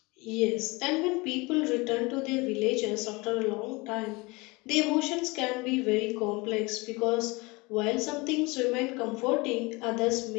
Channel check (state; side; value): quieter; right; 24.9 dB